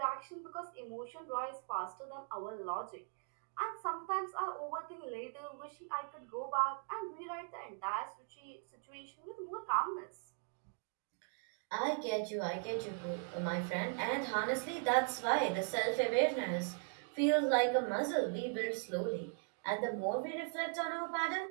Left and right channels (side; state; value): left; silent; 51 dB below the other